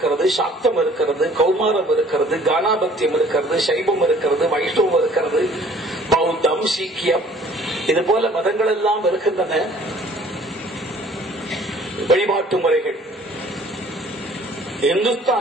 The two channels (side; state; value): both; normal; correlation 0.54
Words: சாக்தம் இருக்கிறது, கௌமாரம் இருக்கிறது, கானாபத்தியம் இருக்கிறது, சைவம் இருக்கிறது, வைஷ்ணவம் இருக்கிறது, பௌத்தம், சீக்கியம், இது போல மதங்கள் எல்லாம் இருக்கின்றன. வழிபாட்டு முறைகள்